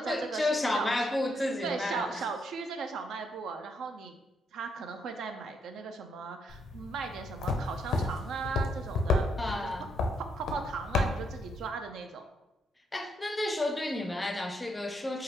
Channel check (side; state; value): both; normal; correlation 0.75